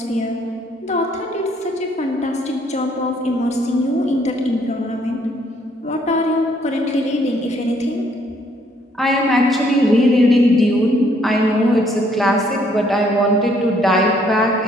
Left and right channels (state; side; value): normal; both; correlation 0.67